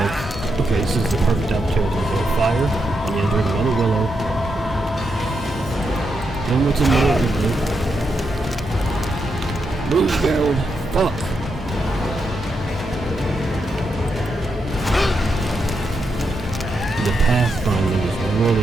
Okay, this is the perfect opportunity to go fire. And you enter another willow. Then what's annoying me? Move, Gerald! Fuck! The pathfinding is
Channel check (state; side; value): normal; both; correlation 0.83